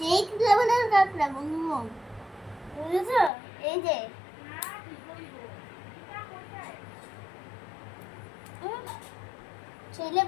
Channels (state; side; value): drops out; right; at 3.3 s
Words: লেভেলের কাঁকড়া বন্ধু, বুঝেছো? এই যে সেই